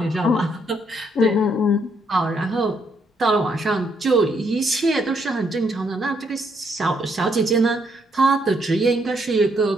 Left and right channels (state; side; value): normal; both; correlation 0.73